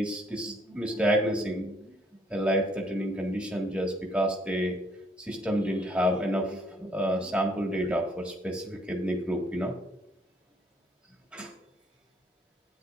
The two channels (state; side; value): normal; both; correlation 0.66